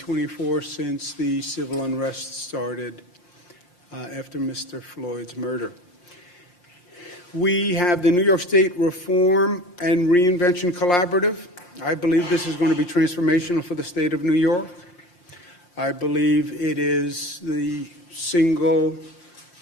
since the civil unrest started after Mr. Floyd's murder. We have the New York State Reform and Reinvention Collaborative. I believe this is going to be transformational for the state of New York. I believe it is the single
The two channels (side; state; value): right; late; 5.7 ms